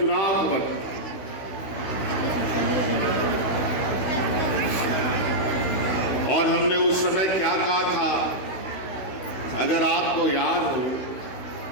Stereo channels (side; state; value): right; late; 16 ms